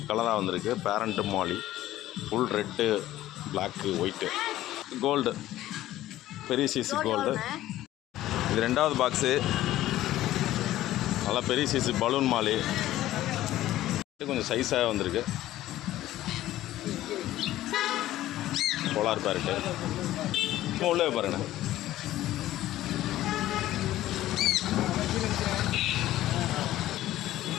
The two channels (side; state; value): right; quieter; 14.5 dB